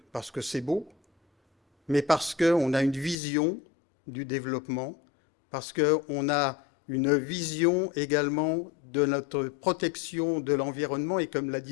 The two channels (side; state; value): right; drops out; at 3.2 s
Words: c'est beau, mais parce qu'on a une vision du développement, parce qu'on a une vision également de notre protection de l'environnement, et comme la